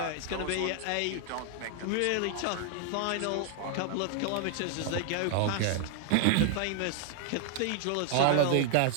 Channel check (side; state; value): both; different; correlation 0.00